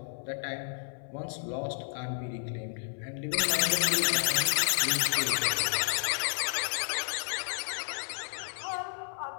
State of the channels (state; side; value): silent; right; 57 dB below the other